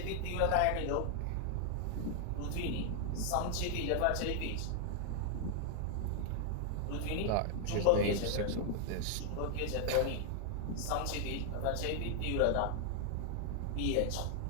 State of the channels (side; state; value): both; different; correlation 0.00